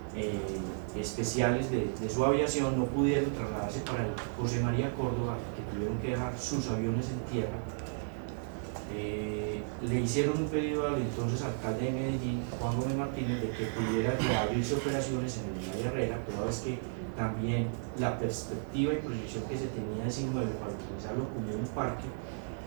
especiales de su aviación no pudieron trasladarse para el José María Córdoba, que tuvieron que dejar sus aviones en tierra. Le hicieron un pedido al entonces alcalde de Medellín, Juan Gómez Martínez, de que pudiera abrirse operaciones en el Olaya Herrera, pero es que también la perspectiva y proyección que se tenía de ese inmueble para utilizarlo como un parque,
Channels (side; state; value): left; silent; digital silence